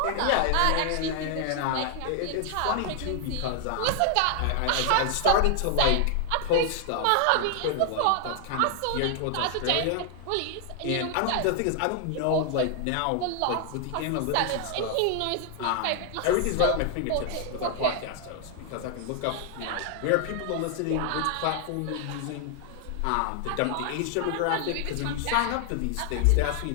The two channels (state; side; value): different; both; correlation 0.00